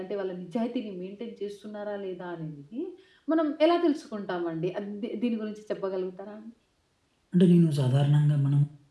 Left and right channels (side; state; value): both; identical; correlation 1.00